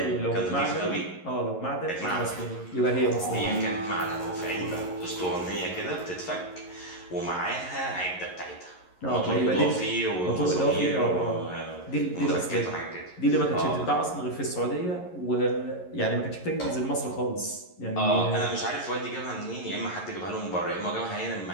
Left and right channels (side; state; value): right; late; 11 ms